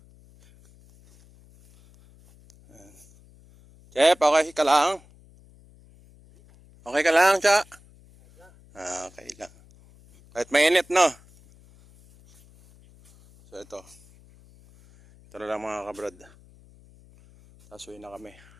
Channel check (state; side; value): noise; left; hum, 26 dB below the sound